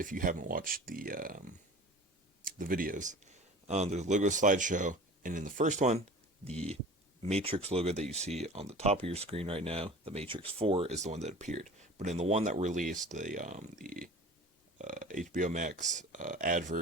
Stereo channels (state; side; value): normal; both; correlation 0.40